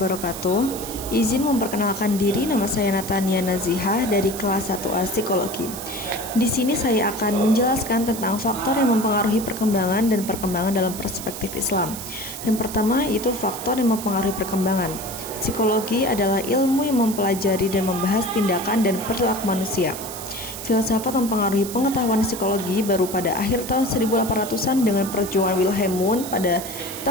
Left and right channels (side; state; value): right; noise; hiss, 10 dB below the sound